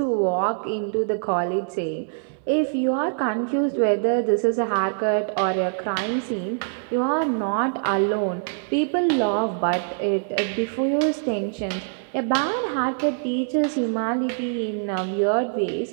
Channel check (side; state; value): left; silent; 60 dB below the other